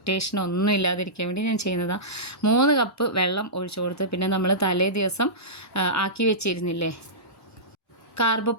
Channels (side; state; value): both; normal; correlation -0.17